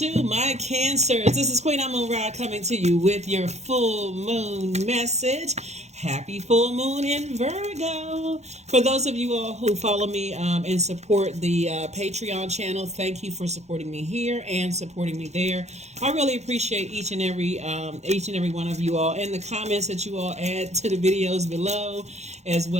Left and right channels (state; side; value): late; left; 0.32 ms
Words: my cancers. This is Queen Amun Ra coming to you with your full moon message. Happy full moon in Virgo. For those of you all who follow me and support the Patreon channel, thank you for supporting me here and supporting me there. I really appreciate each and every one of you all, and the comments that you all add to the videos below, as